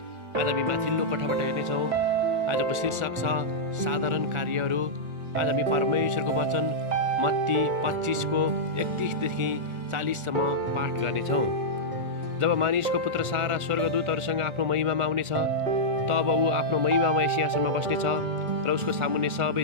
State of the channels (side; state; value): left; late; 1.4 ms